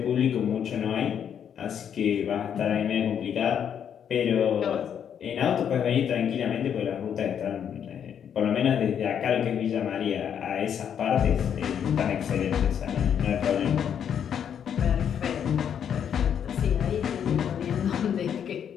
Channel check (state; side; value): quieter; right; 8.5 dB